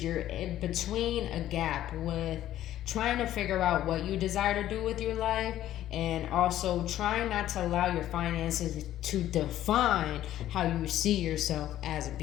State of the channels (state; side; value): quieter; right; 12.9 dB